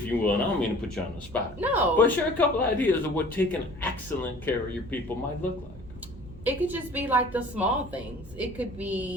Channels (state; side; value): noise; right; hum, 17 dB below the sound